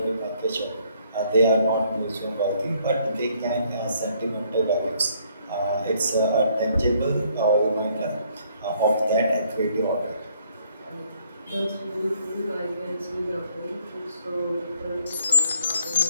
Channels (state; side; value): inverted; both; correlation -0.66